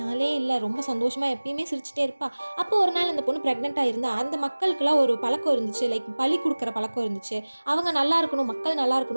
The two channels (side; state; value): both; inverted; correlation -1.00